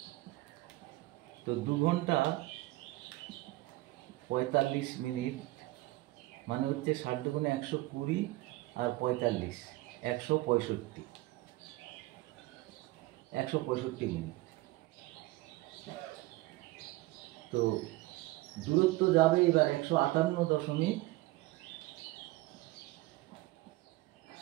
তো 2 ঘন্টা 45 মিনিট মানে হচ্ছে 60 দুগুণে 120 আর 45 165 মিনিট। তো দূরত্ব যাবে এবার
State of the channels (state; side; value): quieter; left; 19.2 dB